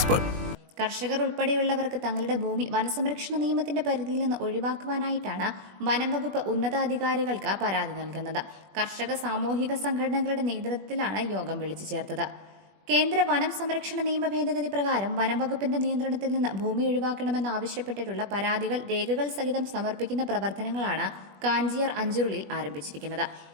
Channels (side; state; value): left; late; 21 ms